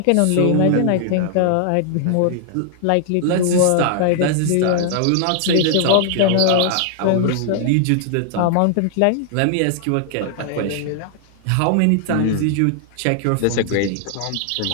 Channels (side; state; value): both; different; correlation 0.00